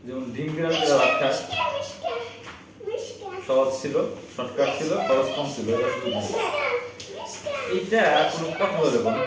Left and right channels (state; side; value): identical; both; correlation 1.00